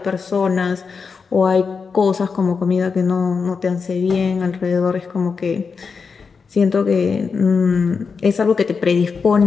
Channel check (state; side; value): quieter; right; 5.3 dB